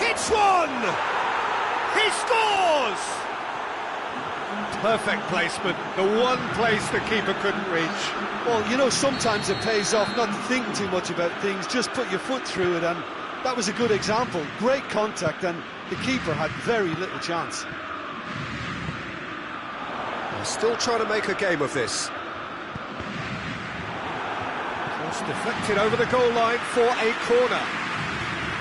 one! He scores! Perfect placement, the one place the keeper couldn't reach. Well, you know, sometimes it pays off not to think too much about things, just put your foot through it, and that was a good example. Great contact, and the keeper had very little chance. They're still trying to make a game of this. Cross deflected over the goal line for a corner.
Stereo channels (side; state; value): both; identical; correlation 1.00